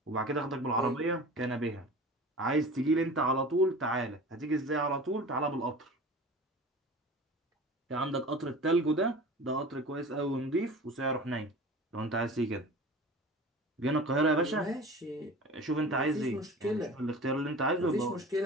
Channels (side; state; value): both; normal; correlation 0.38